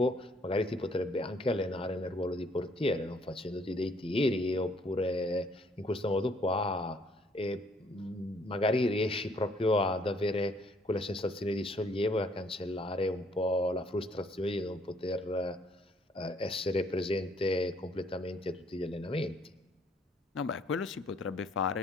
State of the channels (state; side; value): normal; both; correlation 0.64